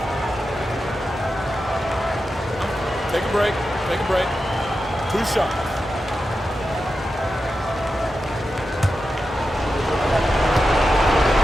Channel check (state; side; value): normal; both; correlation 0.90